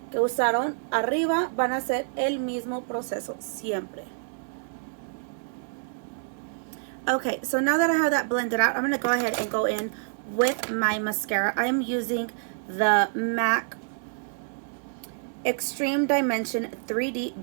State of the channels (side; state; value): left; silent; digital silence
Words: que usaron arriba van a ser el mismo proceso siempre. Okay, so now that I have that blended out, I'm going to go ahead and go in with my mascara. I am using the MAC Extreme Dimension